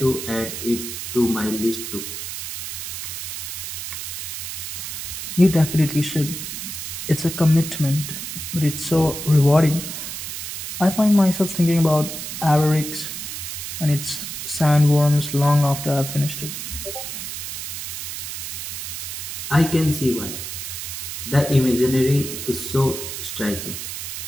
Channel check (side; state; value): right; noise; hiss, 7 dB below the sound